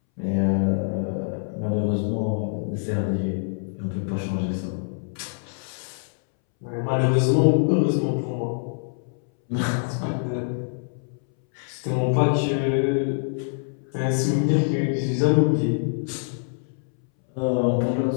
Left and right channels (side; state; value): right; silent; 62 dB below the other